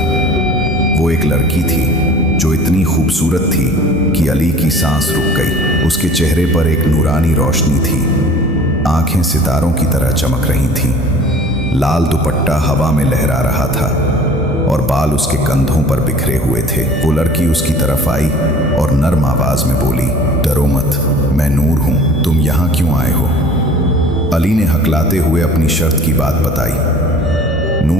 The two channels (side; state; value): both; normal; correlation 0.46